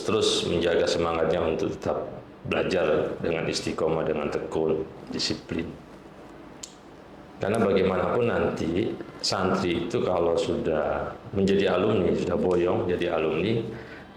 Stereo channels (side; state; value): both; identical; correlation 1.00